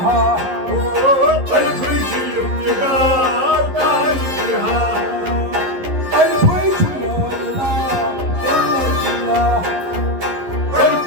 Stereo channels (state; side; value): late; left; 11 ms